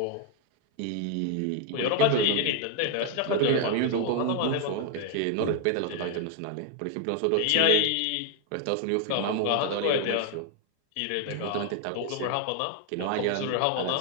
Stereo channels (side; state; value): both; different; correlation 0.00